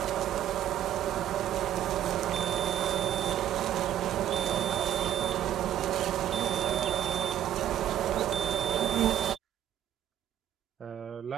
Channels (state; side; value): quieter; left; 11.2 dB